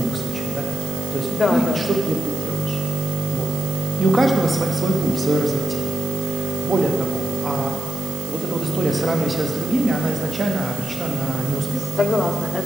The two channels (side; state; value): right; noise; hiss, 13 dB below the sound